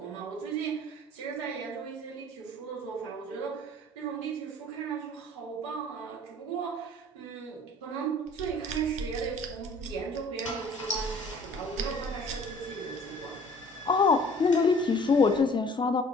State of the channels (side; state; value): both; normal; correlation 0.51